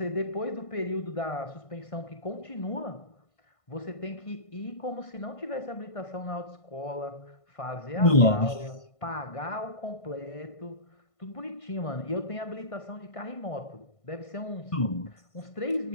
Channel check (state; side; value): late; right; 1.5 ms